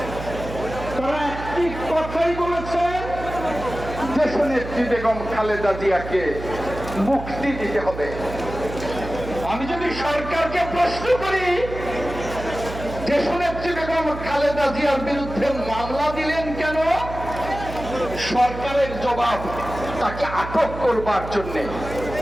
তারা একটি কথাই বলেছেন, দেশনেত্রী বেগম খালেদা জিয়াকে মুক্তি দিতে হবে। আমি যদি সরকারকে প্রশ্ন করি, দেশনেত্রী বেগম খালেদা জিয়ার বিরুদ্ধে মামলা দিলেন কেন, সরকারের জবাব তাকে আটক করবার জন্য।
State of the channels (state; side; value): noise; right; hum, 10 dB below the sound